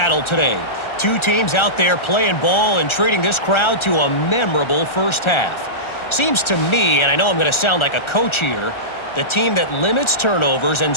today. 2 teams out there playing ball and treating this crowd to a memorable first half. Seems to me, and I know I'm going to sound like a coach here, the team that limits turnovers and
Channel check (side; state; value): right; late; 1.4 ms